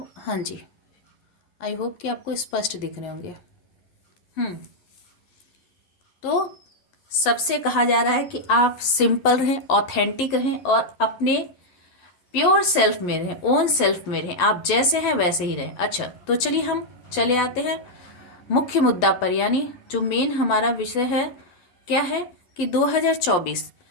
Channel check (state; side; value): late; right; 11 ms